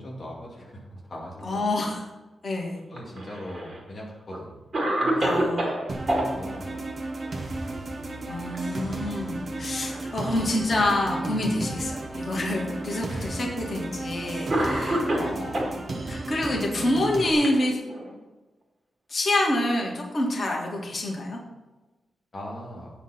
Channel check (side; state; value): both; normal; correlation 0.86